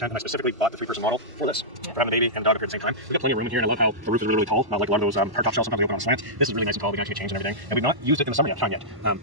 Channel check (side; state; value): left; late; 1.1 ms